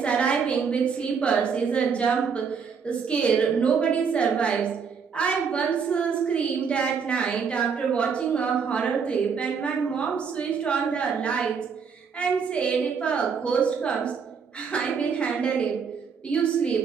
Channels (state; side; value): quieter; left; 6.1 dB